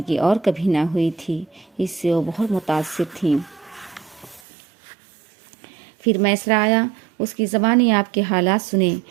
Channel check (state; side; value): drops out; left; at 4.4 s